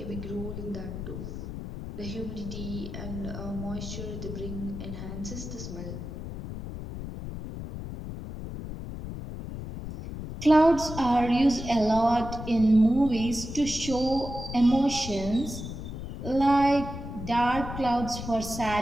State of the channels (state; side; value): noise; left; rumble, 8 dB below the sound